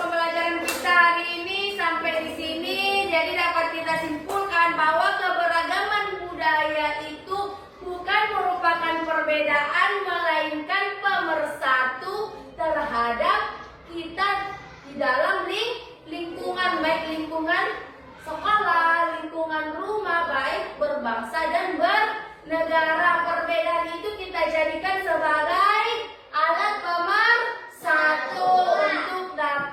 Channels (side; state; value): both; identical; correlation 1.00